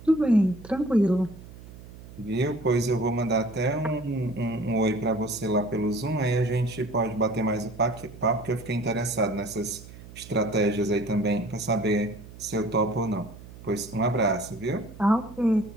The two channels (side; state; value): right; noise; hum, 17 dB below the sound